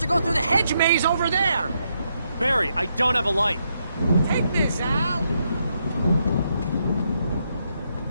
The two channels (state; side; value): inverted; both; correlation -0.79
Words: go through the hedge maze over there. Barry, I don't have a light. Take this, Al.